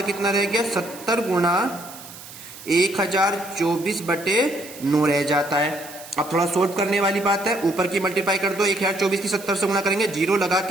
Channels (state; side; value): noise; right; hiss, 16 dB below the sound